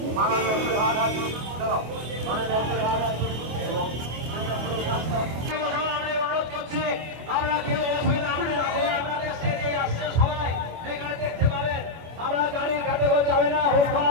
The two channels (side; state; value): left; late; 25 ms